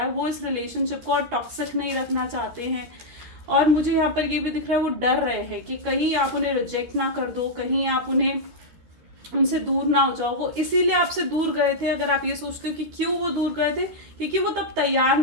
वो इस रिलेशनशिप को और टॉक्सिक नहीं रखना चाहते हैं। और मुझे यहाँ पर ये भी दिख रहा है वो डर रहे हैं कि कहीं आप उन्हें रिजेक्ट ना कर दो, कहीं आप उन्हें उनसे दूर ना हो जाओ। वो इसीलिए आपसे दूर गए थे। अगर आप ये सोचते हो कि क्यों वो दूर गए थे, क्योंकि वो तब तैयार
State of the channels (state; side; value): late; left; 13 ms